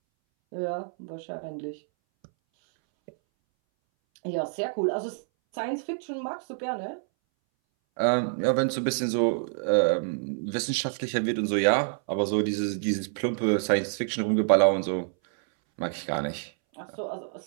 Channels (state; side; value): silent; left; 60 dB below the other